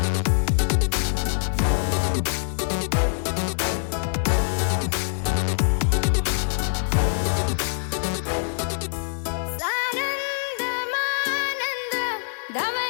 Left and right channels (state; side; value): silent; right; digital silence